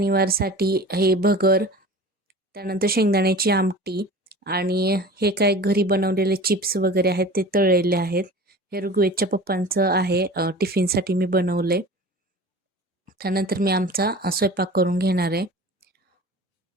हे भगर, त्यानंतर शेंगदाण्याची आमटी आणि हे काय घरी बनवलेले चिप्स वगैरे आहेत ते तळलेले आहेत. हे ऋग्वेदच्या पप्पांचं आहे, टिफिनसाठी मी बनवले. त्यानंतर मी आमचा स्वयंपाक करून घेणार आहे.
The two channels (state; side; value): normal; both; correlation 0.39